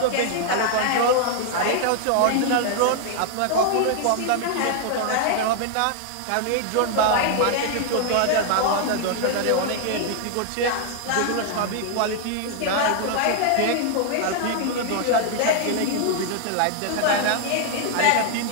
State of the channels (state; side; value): different; both; correlation 0.00